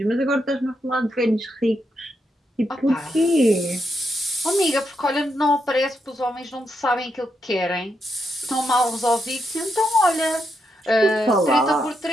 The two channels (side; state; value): both; normal; correlation 0.82